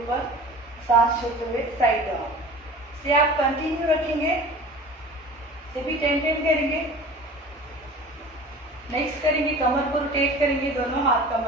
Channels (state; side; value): normal; both; correlation 0.41